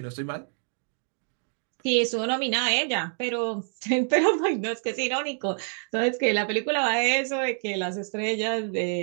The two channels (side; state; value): left; silent; 60 dB below the other